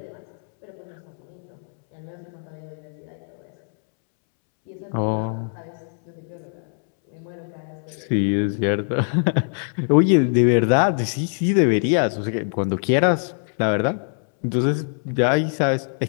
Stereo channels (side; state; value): right; silent; 64 dB below the other